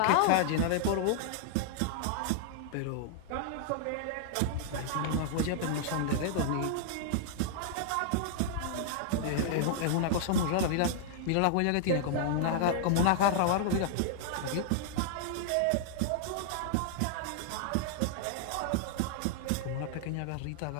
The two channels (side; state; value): both; different; correlation -0.01